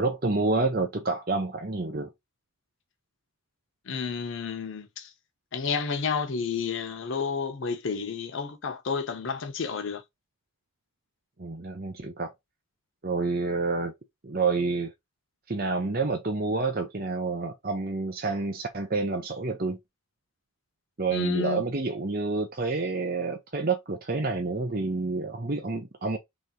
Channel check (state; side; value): normal; both; correlation 0.12